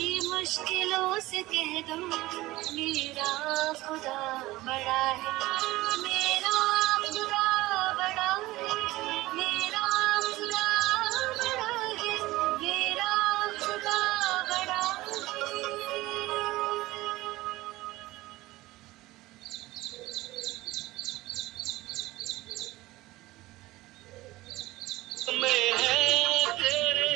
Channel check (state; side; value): quieter; left; 18.4 dB